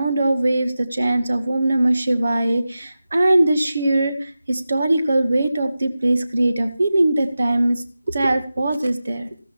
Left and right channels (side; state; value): both; inverted; correlation -0.93